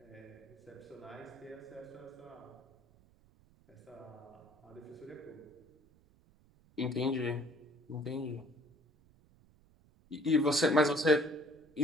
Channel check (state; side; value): noise; right; rumble, 29 dB below the sound